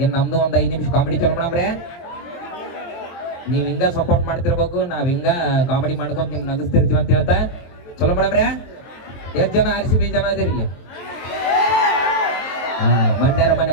ಇನ್ ನಮ್ದು ಒಂದ್ 5 ನಿಮಿಷ ಕಾಮಿಡಿ ಚಲೋ ಮಾಡಮ್ರೆ. ನೀವ್ ಹಿಂಗ ಸಪೋರ್ಟ್ ಮಾಡ್ತಿರ್ಬೇಕು, ನಾವ್ ಹಿಂಗ ಕಾಮಿಡಿ ಮಾಡ್ಕೊಂಡ್ ನಿಮ್ ನಗಿಸ್ತಿರ್ತೀವಿ ಅಂತ ಹೇಳ್ತಾ ಚಲೋ ಮಾಡಮ್ರೆ. ಎಷ್ಟ್ ಜನ RCB ಜನ ಅದಿರಿ ಇಲ್ಲಿ? ಮಂಡ್ಯರ ಮನೆ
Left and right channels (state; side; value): late; right; 23 ms